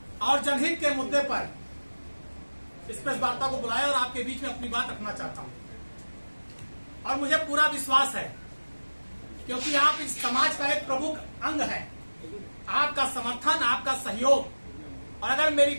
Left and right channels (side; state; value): both; inverted; correlation -1.00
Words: और जनहित के मुद्दे पर इस प्रेस वार्ता को बुलाया और आपके बीच में अपनी बात रखना चाहता हूं। और मुझे पूरा विश्वास है, क्योंकि आप इस समाज का एक प्रमुख अंग है, आपका समर्थन, आपका सहयोग, और अगर मेरी